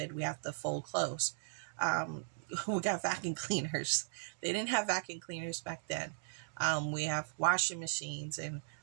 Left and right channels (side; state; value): left; silent; digital silence